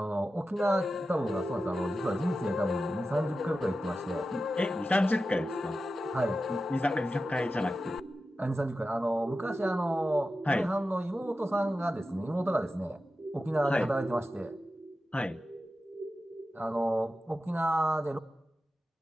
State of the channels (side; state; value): both; normal; correlation 0.92